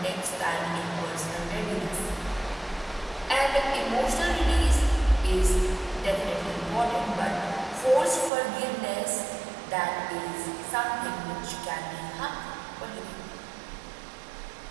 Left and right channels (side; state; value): left; drops out; at 8.3 s